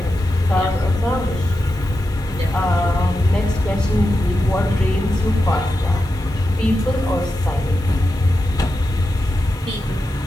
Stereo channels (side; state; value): left; noise; hiss, 28 dB below the sound